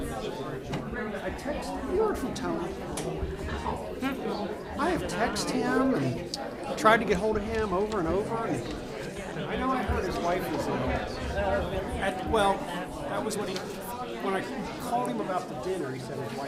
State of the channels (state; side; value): identical; both; correlation 1.00